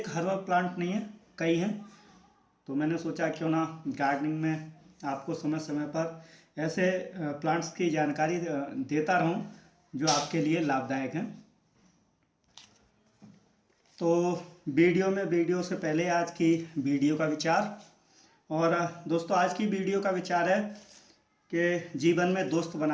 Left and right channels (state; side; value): identical; both; correlation 1.00